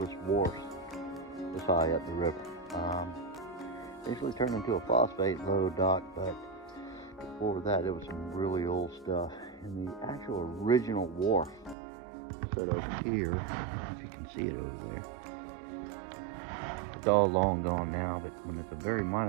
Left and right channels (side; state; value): left; drops out; at 11.8 s